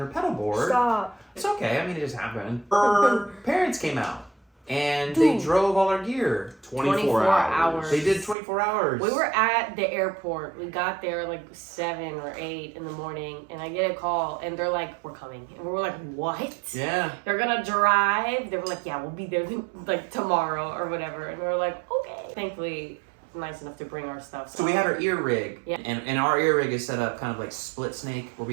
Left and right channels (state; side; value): drops out; left; at 8.3 s